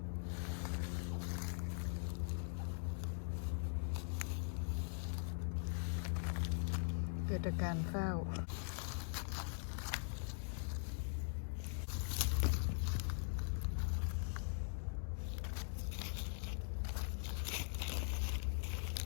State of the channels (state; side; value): silent; right; digital silence